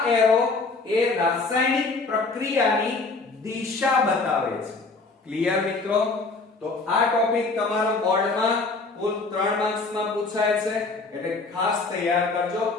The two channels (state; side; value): quieter; right; 3.8 dB